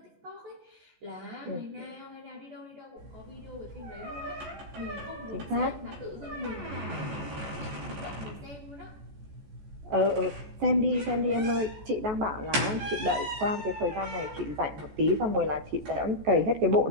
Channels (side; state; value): left; late; 14 ms